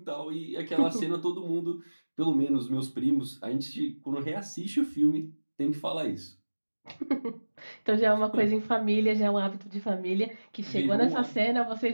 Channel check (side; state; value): both; inverted; correlation -1.00